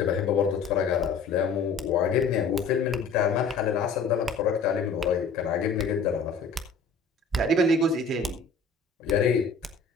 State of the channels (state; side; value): quieter; right; 4.7 dB